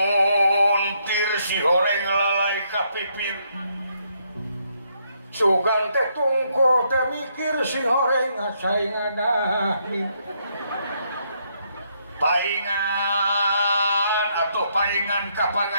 si horeng lalai ka pipir sugan teh tungko teh mikir si horeng saing ngadahni paingan atau paingan ka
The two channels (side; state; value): both; inverted; correlation -0.74